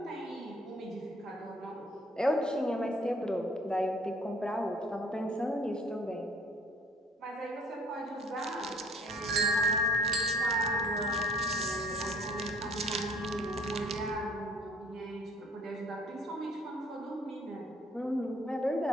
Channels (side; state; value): both; normal; correlation 0.56